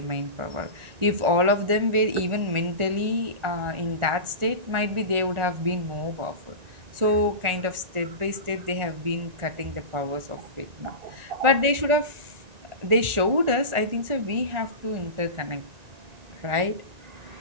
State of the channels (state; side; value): late; left; 1.4 ms